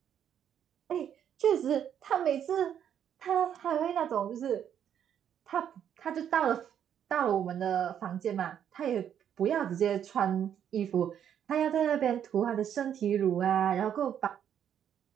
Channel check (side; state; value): left; quieter; 9.2 dB